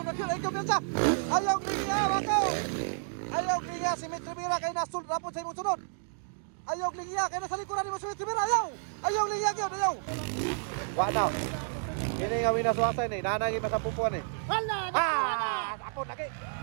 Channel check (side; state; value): left; silent; digital silence